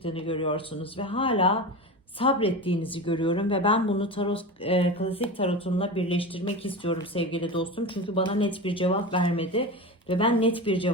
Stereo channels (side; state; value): both; normal; correlation 0.25